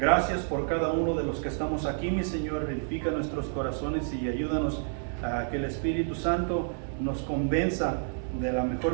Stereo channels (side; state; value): left; silent; digital silence